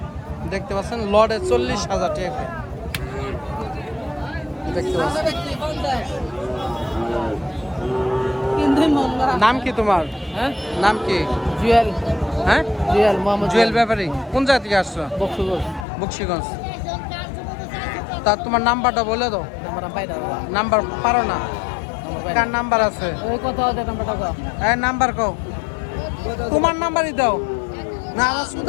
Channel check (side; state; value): right; drops out; at 15.9 s